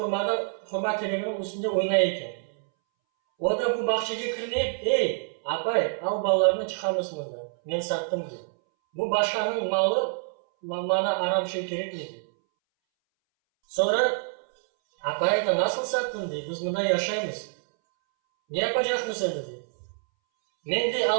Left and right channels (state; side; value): silent; left; 60 dB below the other